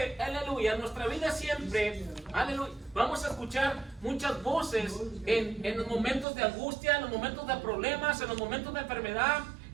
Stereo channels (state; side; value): drops out; left; at 6.2 s